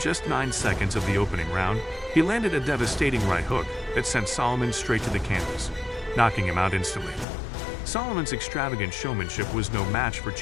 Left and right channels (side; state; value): right; drops out; at 7.2 s